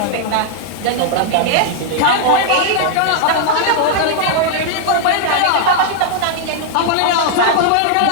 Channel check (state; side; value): different; both; correlation 0.00